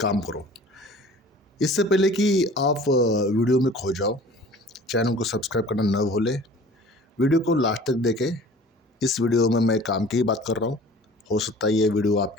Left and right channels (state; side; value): normal; both; correlation 0.46